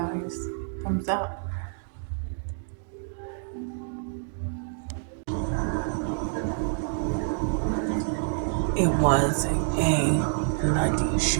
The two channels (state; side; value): silent; left; digital silence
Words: Thumbs up. It was a bloody